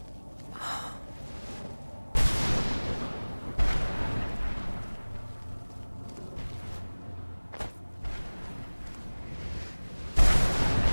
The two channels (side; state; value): both; inverted; correlation -1.00